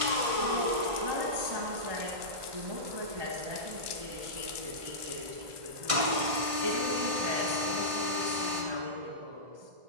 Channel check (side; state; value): left; late; 1.5 ms